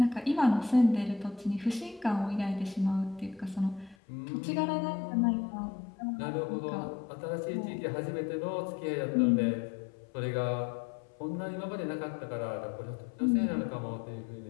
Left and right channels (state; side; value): drops out; right; at 4.0 s